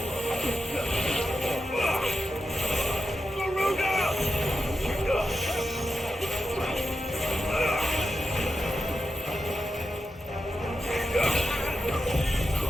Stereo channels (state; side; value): normal; both; correlation 0.89